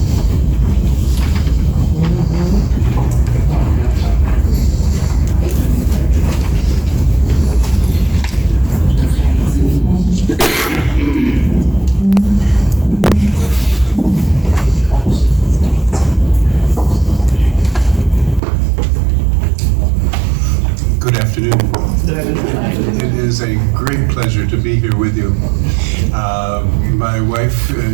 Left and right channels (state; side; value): drops out; left; at 18.4 s